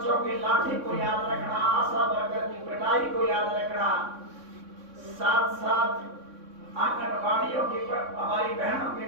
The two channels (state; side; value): late; left; 3.6 ms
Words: की लाठी को याद रखना, आशा वर्कर की पिटाई को याद रखना, साथ साथ आंगनबाड़ियों की हमारी बहनों की